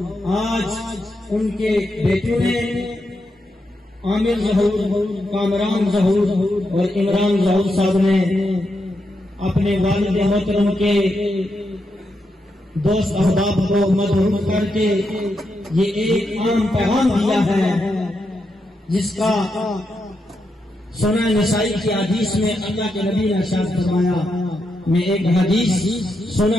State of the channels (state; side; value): normal; both; correlation 0.84